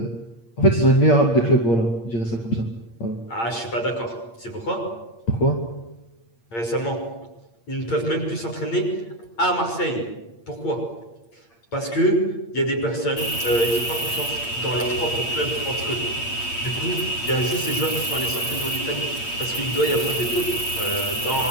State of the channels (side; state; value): right; late; 8.7 ms